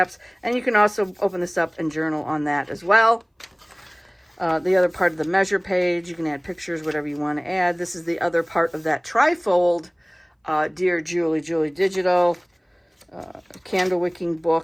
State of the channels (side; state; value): both; identical; correlation 1.00